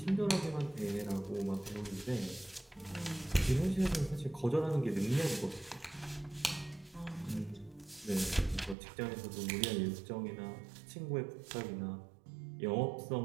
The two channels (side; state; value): left; drops out; at 8.8 s